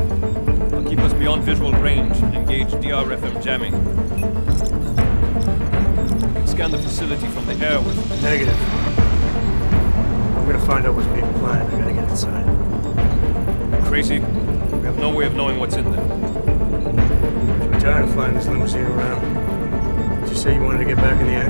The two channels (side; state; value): both; inverted; correlation -1.00